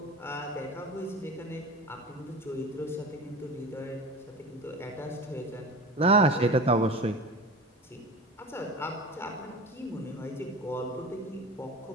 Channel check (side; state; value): both; normal; correlation 0.33